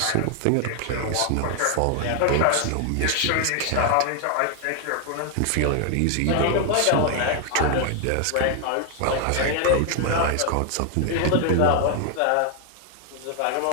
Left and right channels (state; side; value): different; both; correlation 0.00